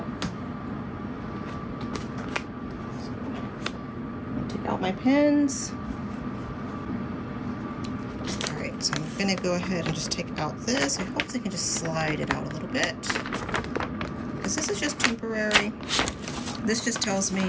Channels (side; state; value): both; identical; correlation 1.00